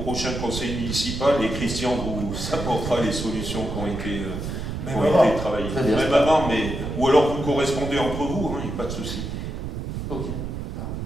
conseil municipal et Christian vous apportera les solutions qui ont été, travaillées. Même avant, mais... Ou alors vous correspondez entre vous, il n'y a pas de souci. Ok.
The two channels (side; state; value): right; noise; rumble, 5 dB below the sound